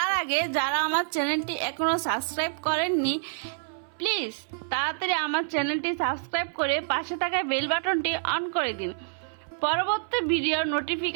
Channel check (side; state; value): left; silent; 60 dB below the other